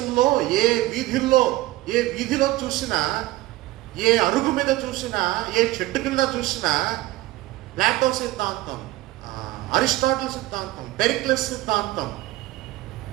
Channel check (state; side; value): quieter; left; 17.9 dB